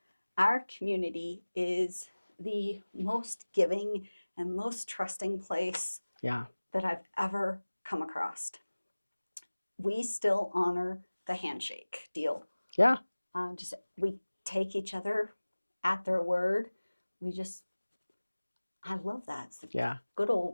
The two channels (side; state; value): both; inverted; correlation -1.00